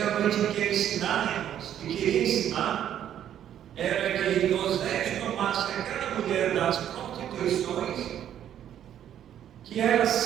quer ensinar, irmãos, e queria ensinar, era que Osés tomasse aquela mulher das prostituições, que era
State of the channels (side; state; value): left; quieter; 10.4 dB